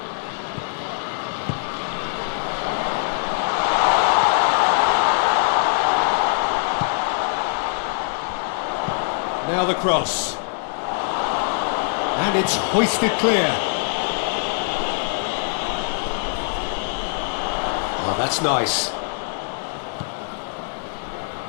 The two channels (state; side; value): silent; right; digital silence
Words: Now the cross. And it's hoisted clear. Oh, that's nice.